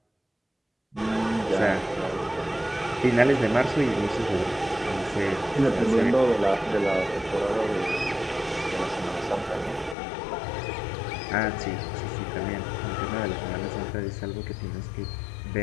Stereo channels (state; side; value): drops out; right; at 10.0 s